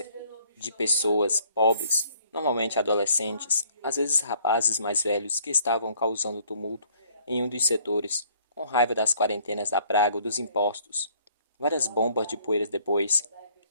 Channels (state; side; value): inverted; both; correlation -0.61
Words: de pessoas pobres, normalmente adolescentes, às vezes rapazes mais velhos que estavam causando tumulto em um dos setores, com raiva das quarentenas da praga ou dos impostos. Várias bombas de poeiras depois